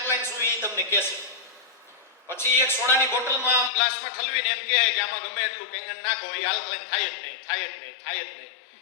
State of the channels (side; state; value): right; drops out; at 3.7 s